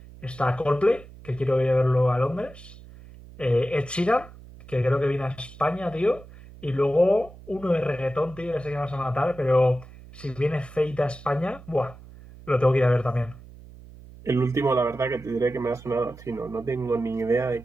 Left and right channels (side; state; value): right; noise; hum, 19 dB below the sound